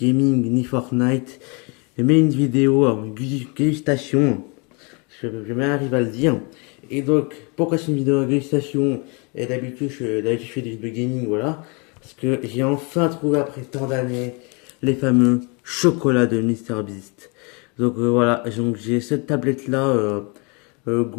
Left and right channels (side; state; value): right; quieter; 31.9 dB